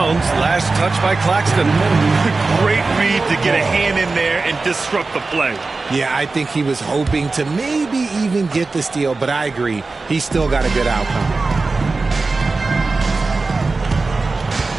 Last touch by Claxton. Great read to get a hand in there and disrupt the play. Yeah, I think he was hoping to maybe even get the steal, but I agree. He's still got a good outcome.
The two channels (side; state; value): left; quieter; 3.8 dB